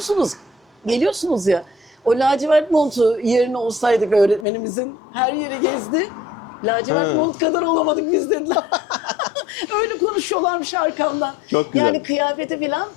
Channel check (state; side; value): drops out; right; at 4.5 s